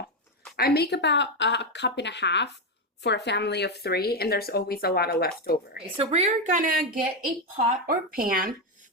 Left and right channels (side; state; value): both; normal; correlation 0.08